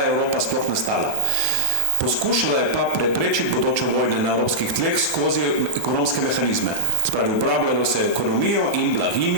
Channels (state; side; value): late; right; 1.2 ms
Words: je Evropa sploh nastala. Poskušala je pa preprečiti bodoče vojne na evropskih tleh skozi ekonomske mehanizme. Spravi, uporabljalo se ekonomijo in